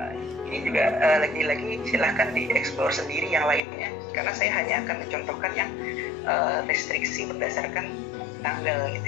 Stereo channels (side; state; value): right; drops out; at 3.6 s